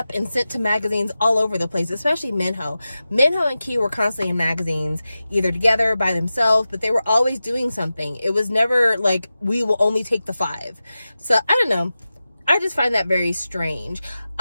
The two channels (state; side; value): inverted; both; correlation -0.94